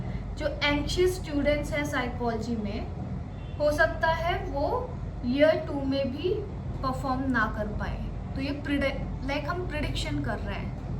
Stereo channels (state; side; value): identical; both; correlation 1.00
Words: जो एंशियस स्टूडेंट्स हैं साइकोलॉजी में, हो सकता है वो ईयर 2 में भी परफॉर्म ना कर पाए. तो ये लाइक हम प्रिडिक्शन कर रहे